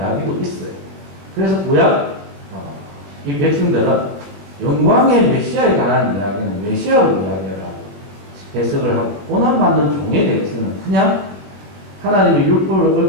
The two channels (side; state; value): left; late; 20 ms